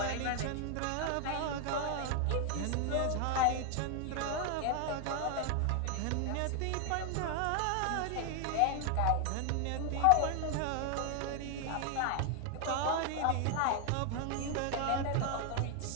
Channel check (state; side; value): different; both; correlation 0.01